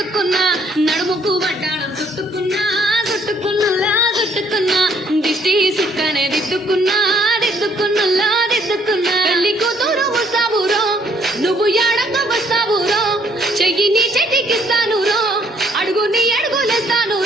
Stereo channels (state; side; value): normal; both; correlation 0.65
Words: నడుముకు వడ్డాణం చుట్టుకున్నా చుట్టుకున్నులా చుట్టుకున్నా దిష్టి సుక్కనే దిద్దుకున్నా దిద్దుకున్నులా దిద్దుకున్నా పెళ్లి కూతురు వస్తావురో నువ్వు యాడంగా వస్తావురో చెయ్యి నీ చెట్టికిస్తాను రో అడుగు నీ అడుగులేస్తాను